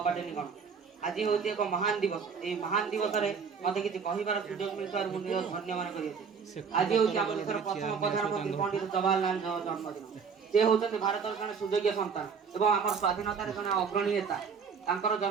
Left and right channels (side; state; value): left; quieter; 6.0 dB